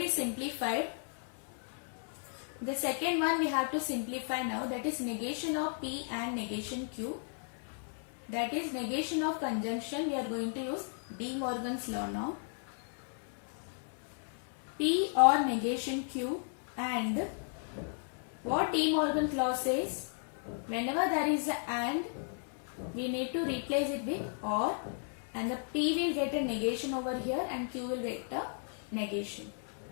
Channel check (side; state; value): right; silent; 55 dB below the other